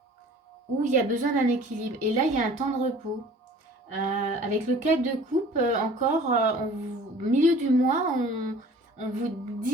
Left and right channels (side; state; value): both; normal; correlation 0.48